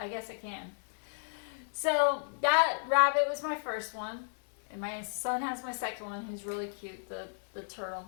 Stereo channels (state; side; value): silent; right; 56 dB below the other